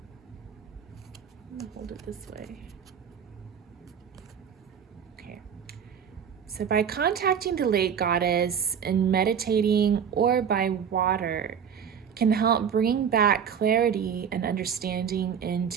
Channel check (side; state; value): left; quieter; 7.7 dB